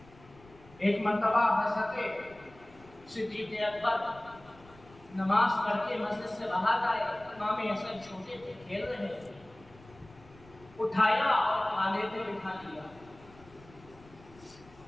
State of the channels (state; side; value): noise; left; rumble, 24 dB below the sound